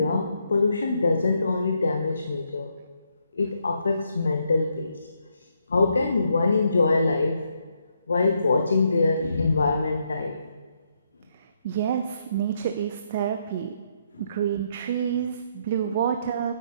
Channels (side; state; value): both; inverted; correlation -0.76